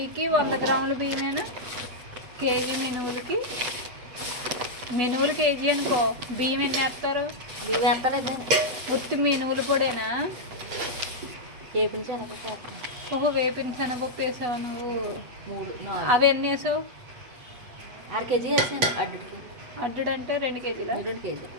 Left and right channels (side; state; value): left; late; 8.2 ms